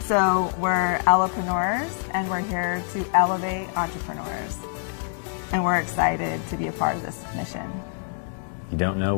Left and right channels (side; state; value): right; silent; digital silence